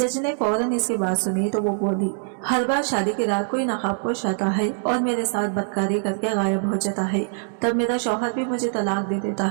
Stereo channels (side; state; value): left; silent; digital silence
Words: ने फौरन इसकी बात सुनी तो वो बोली, हर बार शादी की रात कोई नकाबपोश आता है और मेरे साथ बदकारी करके गायब हो जाता है, तब मेरा शौहर भी मुझे तलाक दे देता